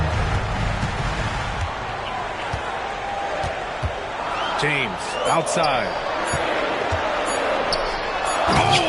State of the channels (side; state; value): both; identical; correlation 1.00